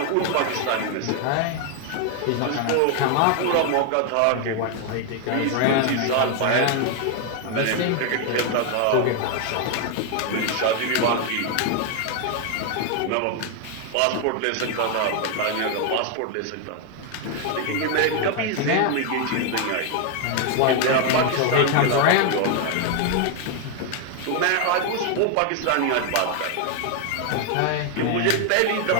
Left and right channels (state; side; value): different; both; correlation 0.01